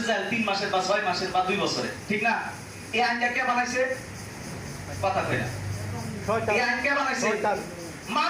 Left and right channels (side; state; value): both; identical; correlation 1.00